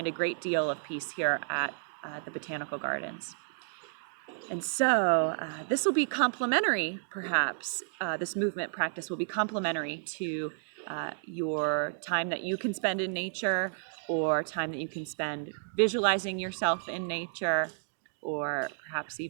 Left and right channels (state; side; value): silent; left; digital silence